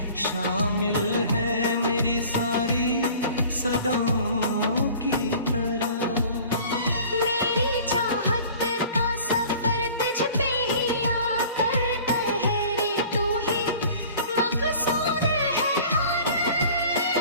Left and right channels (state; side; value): inverted; both; correlation -0.46